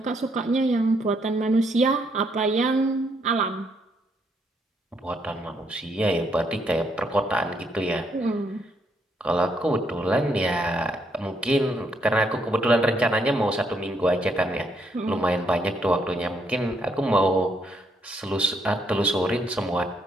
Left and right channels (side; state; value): both; normal; correlation 0.73